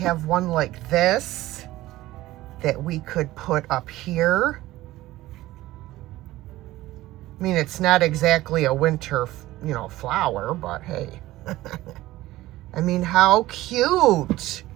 one like this that we could put up here. I mean, it's not exactly a winter, you know, flower, but hey. I mean, how cute.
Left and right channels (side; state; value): left; quieter; 16.7 dB